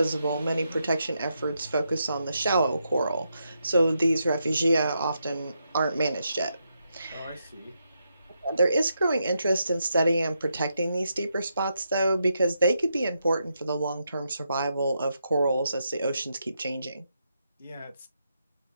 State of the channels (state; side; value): inverted; both; correlation -0.82